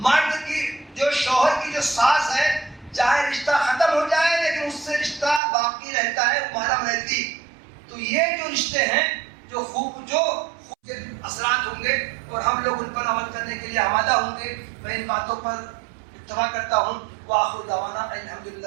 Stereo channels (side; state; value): left; drops out; at 5.4 s